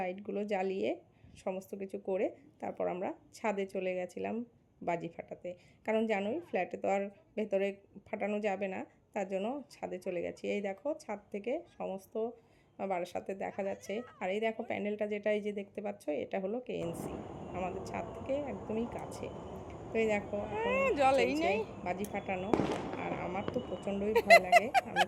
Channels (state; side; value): identical; both; correlation 1.00